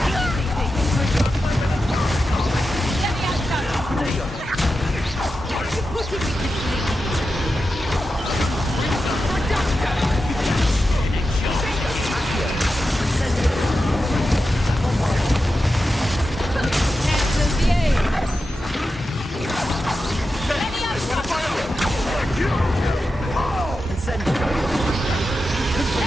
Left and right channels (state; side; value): normal; both; correlation 0.90